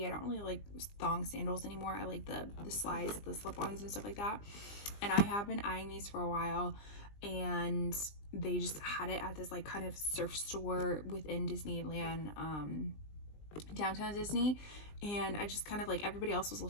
I don't really like thong sandals anymore. I like the slides, the slip-ons and stuff like that. And I have been eyeing these for a while, and they just had it at this like kind of surf store within Disneyland, downtown Disney. And I just kind of like, everybody else was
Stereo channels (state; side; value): late; right; 20 ms